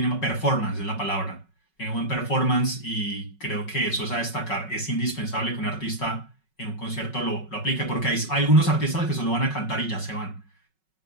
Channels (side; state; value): right; late; 5.4 ms